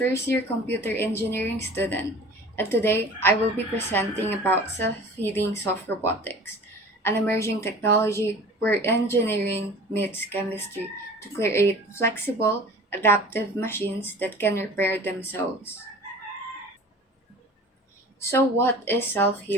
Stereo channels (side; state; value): both; normal; correlation 0.42